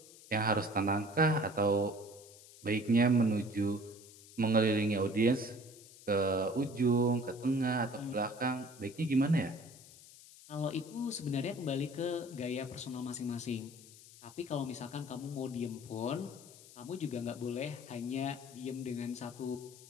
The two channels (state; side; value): noise; left; hiss, 20 dB below the sound